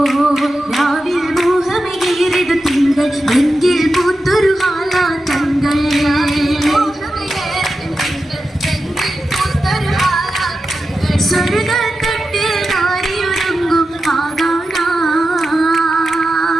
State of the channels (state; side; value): normal; both; correlation 0.91